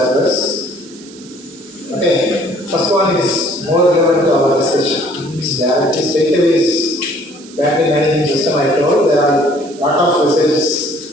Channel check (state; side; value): noise; right; hiss, 21 dB below the sound